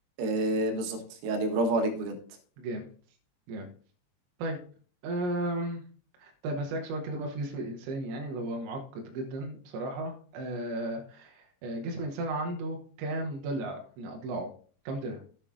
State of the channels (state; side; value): late; left; 22 ms